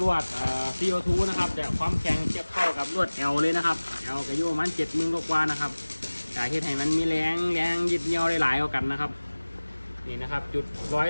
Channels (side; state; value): both; inverted; correlation -1.00